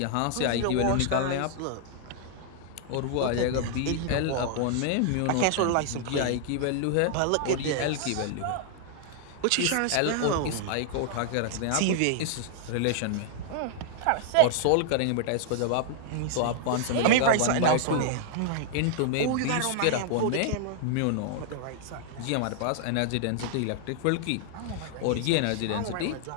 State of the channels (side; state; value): both; different; correlation 0.00